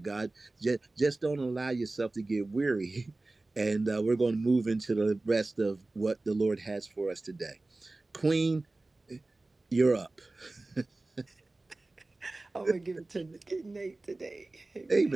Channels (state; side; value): quieter; left; 3.1 dB